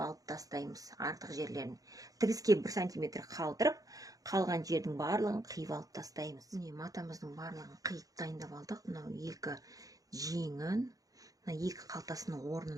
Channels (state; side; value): late; left; 0.17 ms